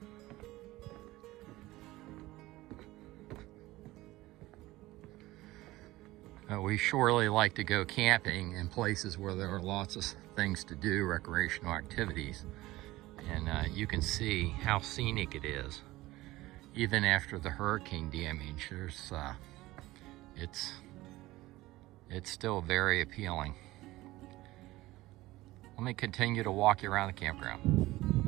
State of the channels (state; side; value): quieter; left; 18.2 dB